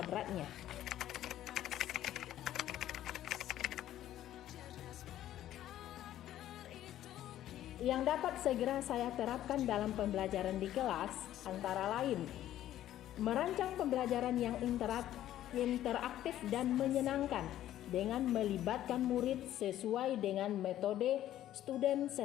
Yang dapat segera saya terapkan dalam pembelajaran di kelas antara lain merancang pembelajaran yang interaktif dan menyenangkan dengan melibatkan murid sesuai dengan metode student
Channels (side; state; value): right; quieter; 12.7 dB